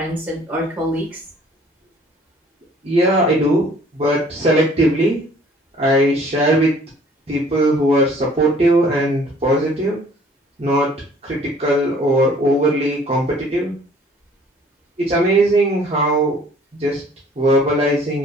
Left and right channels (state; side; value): normal; both; correlation 0.55